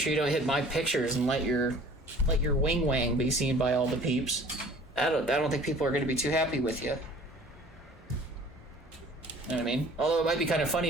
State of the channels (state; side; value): normal; both; correlation 0.49